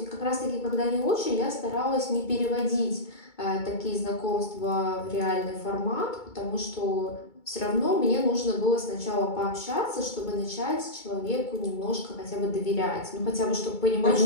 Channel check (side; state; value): right; late; 2.3 ms